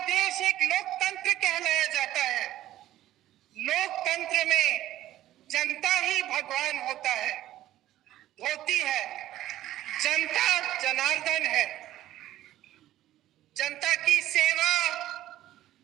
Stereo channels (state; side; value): quieter; left; 13.9 dB